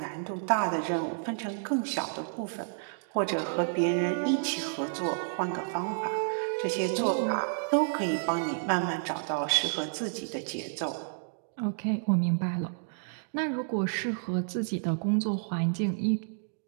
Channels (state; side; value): silent; left; digital silence